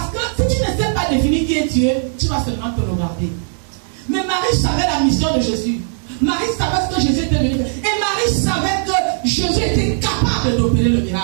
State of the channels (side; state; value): left; silent; digital silence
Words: que si tu ne sais pas définir qui est Dieu, tu vas seulement te regarder. Mais Marie savait la mission de Jésus. Marie savait ce que Jésus était venu faire. Et Marie savait que Jésus était capable d'opérer le